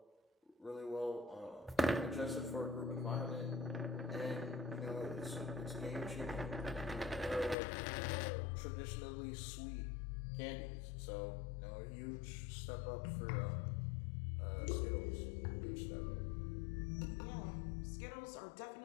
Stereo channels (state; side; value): drops out; right; at 7.6 s